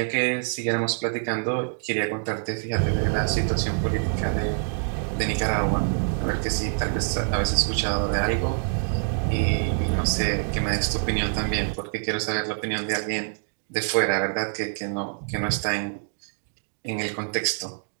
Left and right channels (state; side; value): silent; left; digital silence